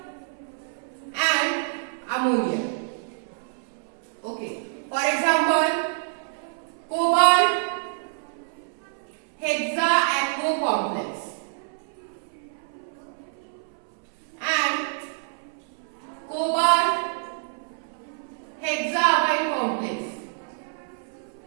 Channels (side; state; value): left; silent; 60 dB below the other